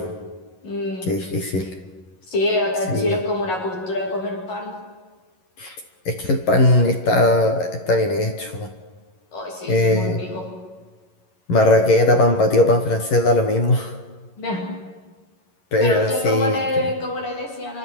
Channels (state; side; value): late; right; 11 ms